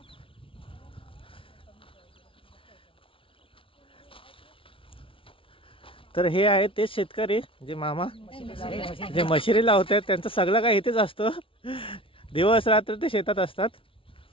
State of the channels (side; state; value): right; late; 0.25 ms